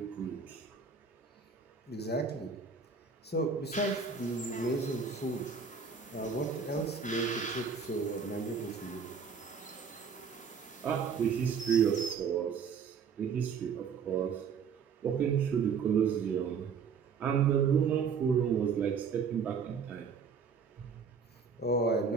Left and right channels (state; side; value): quieter; left; 5.9 dB